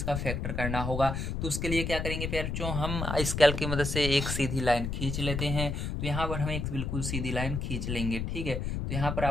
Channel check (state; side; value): noise; left; rumble, 2 dB below the sound